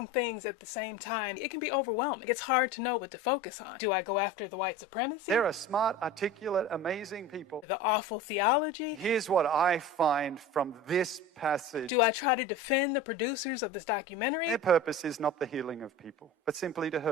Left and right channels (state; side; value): normal; both; correlation 0.33